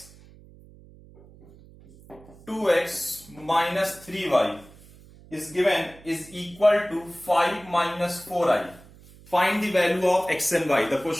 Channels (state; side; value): noise; right; hum, 23 dB below the sound